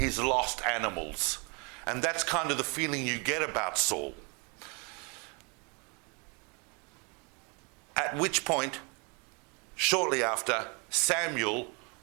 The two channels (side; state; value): left; quieter; 32.8 dB